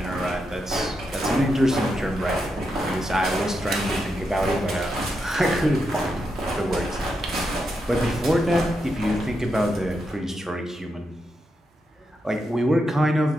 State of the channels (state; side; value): normal; both; correlation 0.84